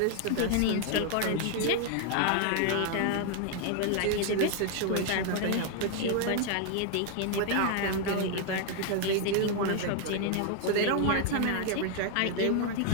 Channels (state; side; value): different; both; correlation 0.00